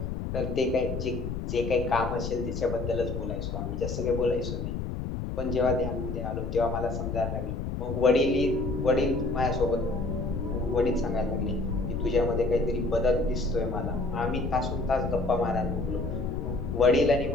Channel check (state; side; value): noise; left; rumble, 4 dB below the sound